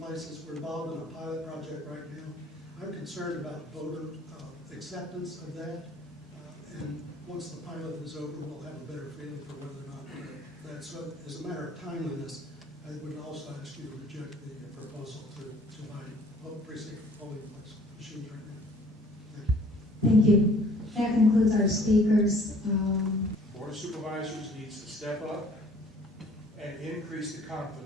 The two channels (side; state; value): both; normal; correlation 0.55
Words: we're involved in a pilot project right now. I'm concerned about voter acceptance of that. And once the pilot is over, we'll have a better feeling for whether or not that's, so as a matter of timeliness, I would also ask you to reject the proposal to buy precinct polling place machines right now. Thank you. Thank you. That concludes our speakers. Board of Supervisors needs to step up and increase the